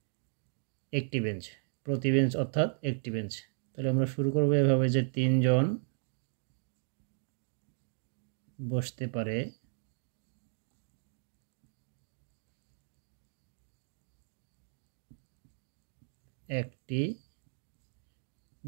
একটি বেঞ্চ, প্রতি বেঞ্চ অর্থাৎ একটি বেঞ্চ। তাহলে আমরা শুরু করব এভাবে যে ৩ জন বসতে পারে একটি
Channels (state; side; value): silent; left; digital silence